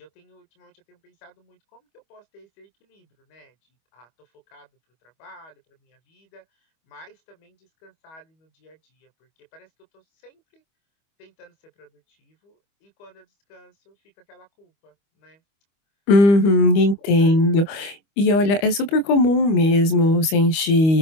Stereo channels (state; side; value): late; right; 25 ms